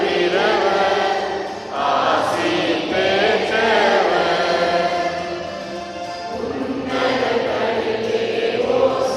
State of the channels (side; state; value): both; identical; correlation 1.00